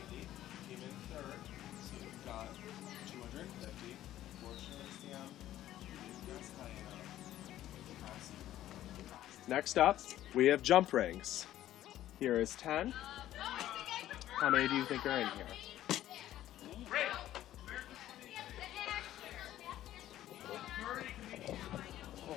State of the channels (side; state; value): right; quieter; 13.2 dB